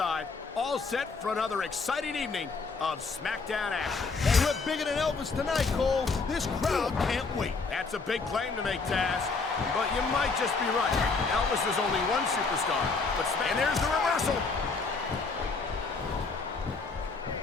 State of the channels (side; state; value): right; quieter; 4.3 dB